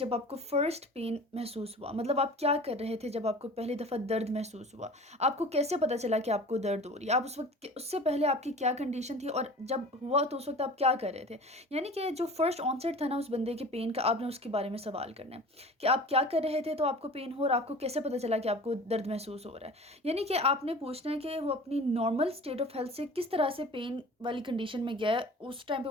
आपको फर्स्ट पेन महसूस हुआ, मतलब आप क्या कर रहे थे जब आपको पहली दफ़ा दर्द महसूस हुआ। आपको कैसे पता चला कि आपको दर्द हो रही है, आप उस वक्त उससे पहले आपकी क्या कंडीशन थी, और जब हुआ तो उस वक्त आप क्या कर रहे थे। यानी कि जो फर्स्ट ऑनसेट था ना उस बंदे के पेन का, आपने उसके बारे में सवाल करना है कि आप क्या कर रहे थे तो आपको पेन हो, और आपको कैसे पता चला कि आपको दर्द महसूस हो रहा है। यानी कि आपने पूछना है कि वो अपनी नॉर्मल स्टेट ऑफ हेल्थ से किस तरह से पेन वाली कंडीशन में गया है, उस टाइम पे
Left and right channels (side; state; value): both; normal; correlation 0.41